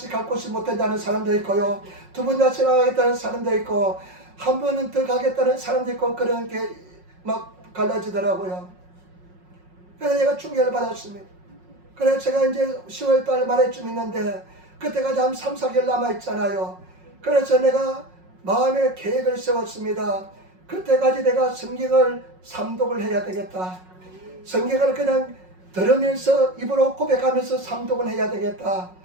갈 곳이 못 된다는 사람도 있고요, 두 번 다시 나가겠다는 사람도 있고, 한 번은 더 가겠다는 사람도 있고, 그런 게 막 갈라지더라고요. 그래서 제가 충격을 받았습니다. 그래서 제가 이제 10월 달 말에쯤 있는데 그때까지 한 3, 4개월 남아있잖아요. 그래서 내가 마음의 계획을 세웠습니다. 그때까지 내가 성경을 삼독을 해야 되겠다. 성경을 그냥 들으면서 입으로 고백하면서 삼독을 해야 되겠다.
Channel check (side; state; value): left; late; 5.5 ms